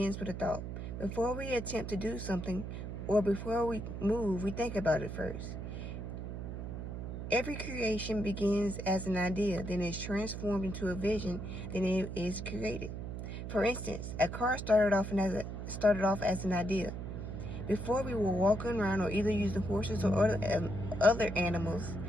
with a thought. Before we attempt to do something or before we move, we think about it first. Every creation begins as an idea, then is transformed into a vision, then it is created. For instance, a car started off as an idea. Before we were walking around or either using horses or other animals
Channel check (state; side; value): noise; right; hum, 6 dB below the sound